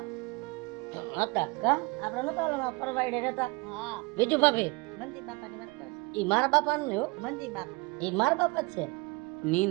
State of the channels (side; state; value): left; quieter; 25.9 dB